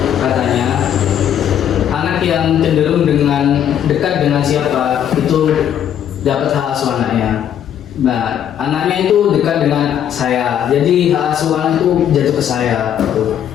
katanya anak yang cenderung dengan dekat dengan siapa itu dapat hak asuh anaknya. Nah, anaknya itu dekat dengan saya, jadi hak asuh anak itu jatuh ke saya, itu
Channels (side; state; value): right; quieter; 9.8 dB